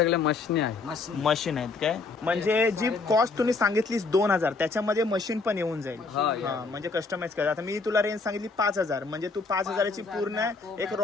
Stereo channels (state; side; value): quieter; right; 4.1 dB